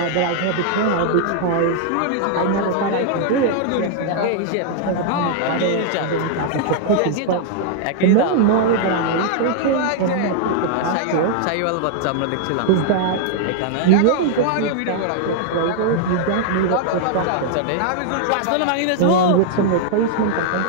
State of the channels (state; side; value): different; both; correlation -0.01